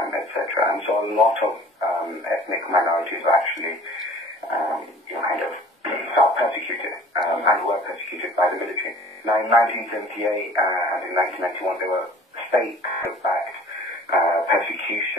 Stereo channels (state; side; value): normal; both; correlation 0.48